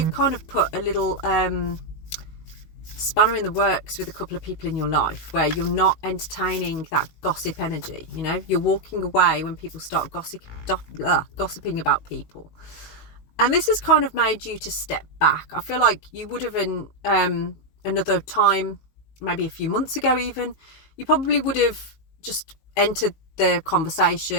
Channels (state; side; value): late; right; 19 ms